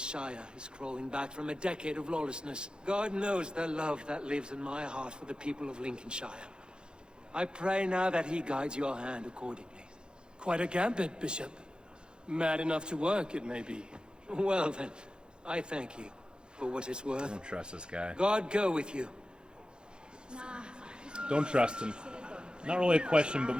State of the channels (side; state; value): left; late; 0.049 ms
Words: is crawling back from a decade of lawlessness. God knows the love that lives in my heart for the people of Lincolnshire. I pray now that he guides your hand accordingly. Quite a gambit, Bishop. Mad enough to work, it may be. Well then, I thank you for what it's worth. Don't trust this guy. God go with you. Don't trust him. not really a question, but